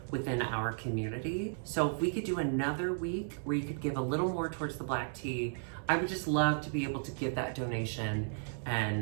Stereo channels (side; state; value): left; silent; digital silence